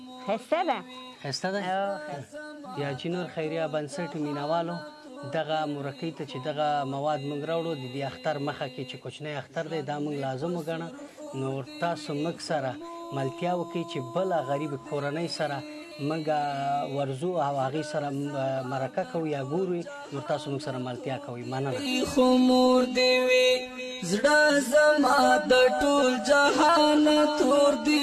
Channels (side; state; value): both; identical; correlation 1.00